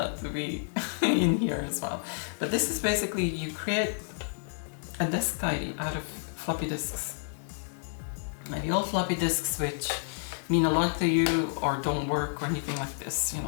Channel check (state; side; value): silent; right; digital silence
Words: to be in here as well. But this is basically, you create a disk tidy out of floppy disks. Maybe old floppy disks which mean a lot to you or don't work or anything like this,